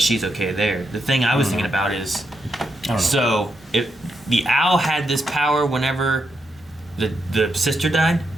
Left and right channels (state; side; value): normal; both; correlation 0.82